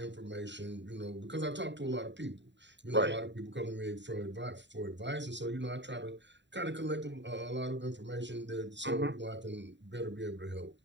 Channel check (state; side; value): late; left; 0.52 ms